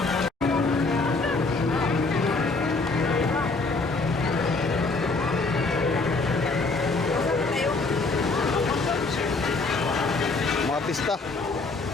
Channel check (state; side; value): quieter; right; 3.7 dB